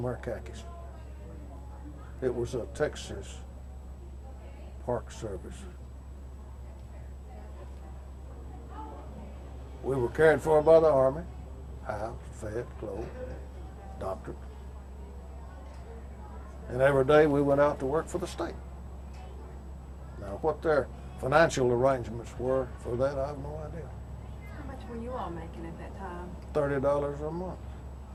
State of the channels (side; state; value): both; identical; correlation 1.00